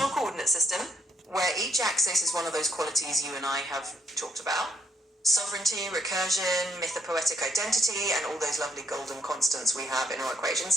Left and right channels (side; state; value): both; normal; correlation 0.72